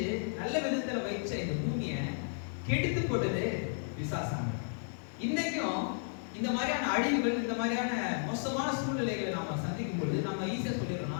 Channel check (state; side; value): silent; right; digital silence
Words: நல்ல விதத்துல வைச்ச இந்த பூமியை கெடுத்து போட்டது பிசாசாங்க. இன்னைக்கும் இந்த மாதிரியான அழிவுகள், இந்த மாதிரியான மோசமான சூழ்நிலைகளை நாம சந்திக்கும் பொழுது நம்ம ஈஸியா